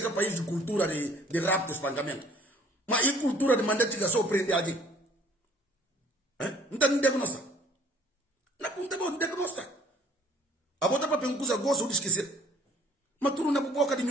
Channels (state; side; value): normal; both; correlation 0.56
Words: um país de cultura de rapto e espancamento. Mas e cultura de mandar tiga só prender alguém? Não tem diagnóstico. Não tem diagnóstico. A bota para pencusa gosto de esquecer. Mas tu não é boca de